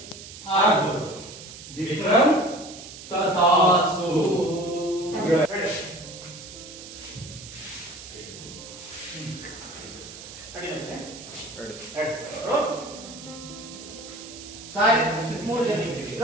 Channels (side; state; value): right; noise; hiss, 14 dB below the sound